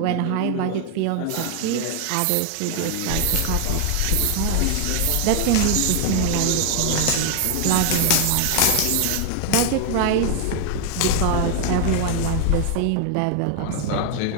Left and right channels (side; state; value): both; different; correlation 0.00